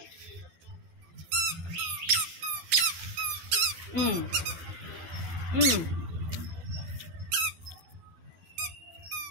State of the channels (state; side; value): late; left; 12 ms